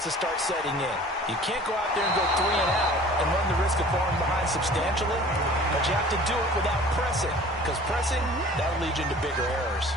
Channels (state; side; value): normal; both; correlation 0.46